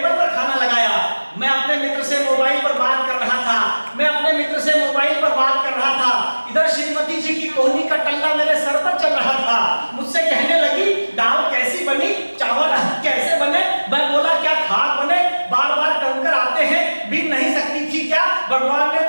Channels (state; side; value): inverted; both; correlation -1.00